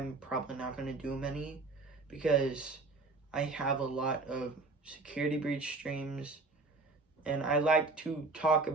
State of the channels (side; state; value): left; quieter; 3.6 dB